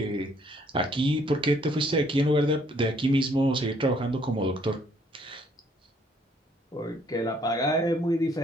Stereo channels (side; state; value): both; normal; correlation 0.65